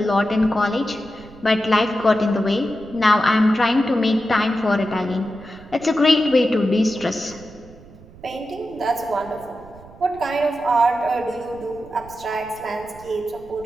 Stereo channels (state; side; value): noise; right; rumble, 21 dB below the sound